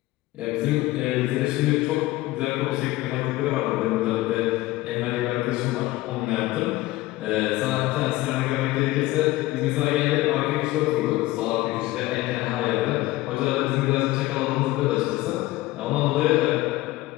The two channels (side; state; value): right; quieter; 18.1 dB